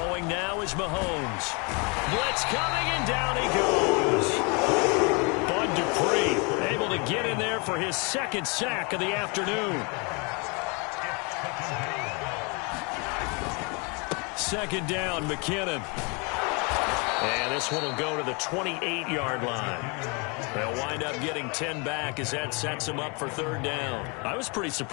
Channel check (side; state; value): right; quieter; 31.9 dB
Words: now is Mahomes. Blitz coming, and down he goes. Bud Dupree able to get in there for his 2nd sack of the afternoon. 2nd down, McKinnon. And this one will go to the 28-yard line. They'll wind up getting 10 back as that sets them up for 3rd down. I was pretty